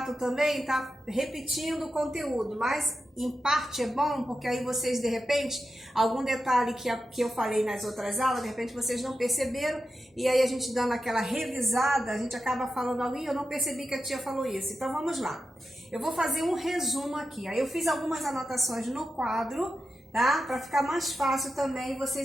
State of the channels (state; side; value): normal; both; correlation 0.90